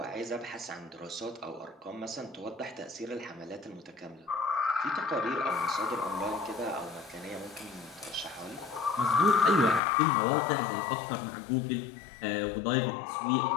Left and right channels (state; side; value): drops out; right; at 9.8 s